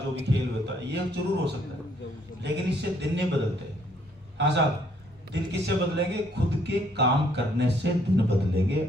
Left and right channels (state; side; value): normal; both; correlation 0.66